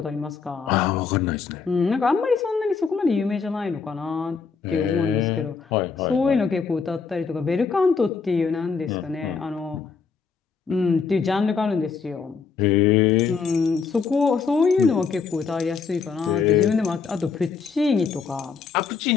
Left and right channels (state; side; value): quieter; right; 5.4 dB